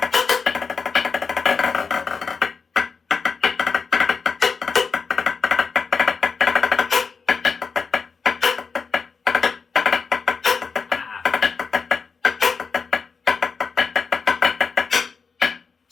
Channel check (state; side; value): quieter; right; 5.2 dB